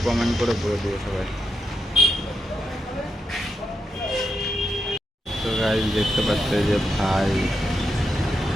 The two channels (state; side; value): normal; both; correlation 0.85